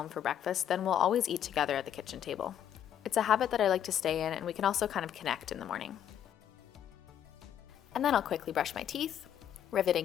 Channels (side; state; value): right; quieter; 9.9 dB